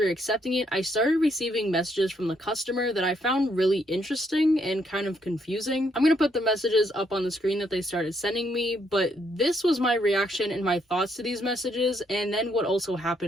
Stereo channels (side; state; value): both; normal; correlation 0.73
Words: accepting it, I started receiving messages from the customer that I found really interesting and kind of confusing. I'm gonna put the messages up on the screen that they started sending me, but this was my reaction and my thoughts to these messages, and then what also